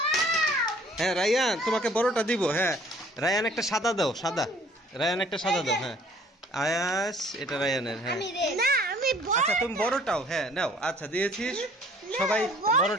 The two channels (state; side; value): normal; both; correlation 0.55